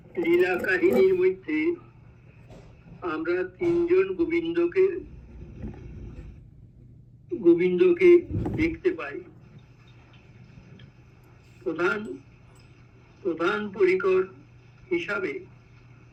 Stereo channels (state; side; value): identical; both; correlation 1.00